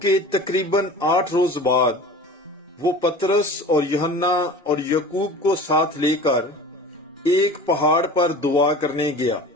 کے تقریباً 8 روز بعد وہ پطرس اور یوحنا اور یعقوب کو ساتھ لے کر ایک پہاڑ پر دعا کرنے گیا،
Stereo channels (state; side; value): normal; both; correlation 0.39